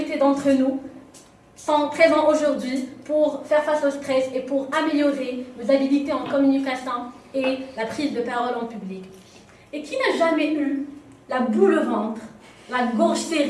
d'entre nous sont présents aujourd'hui pour faire face au stress et pour améliorer nos habilités en communication et la prise de parole en public. Et qui n'a jamais eu la boule au ventre, la gorge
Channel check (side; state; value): both; identical; correlation 1.00